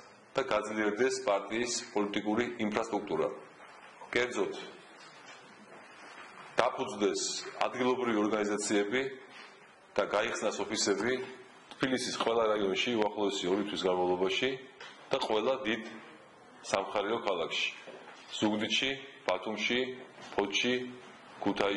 და გაძლიერდეს პარტიის პოლიტიკური ინფრასტრუქტურა. კერძოდ, დაფუძნდეს ადგილობრივი ორგანიზაციები და გაიხსნას ოფისები თბილისის ყველა რაიონში უახლოესი 2 თვის განმავლობაში და ყველა დიდ სამხარეო ქალაქში: ზუგდიდში, ბათუმში, ფოთში,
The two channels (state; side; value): identical; both; correlation 1.00